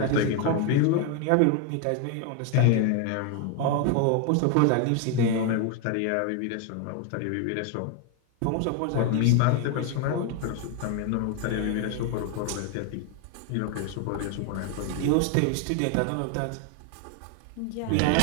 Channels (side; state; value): both; different; correlation 0.01